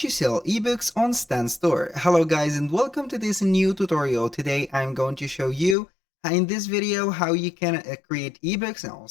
sell ebooks on Stan Store. Hello guys and welcome to this new tutorial. Today I'm going to show you in this video how you can create ebooks and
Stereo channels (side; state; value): right; drops out; at 5.8 s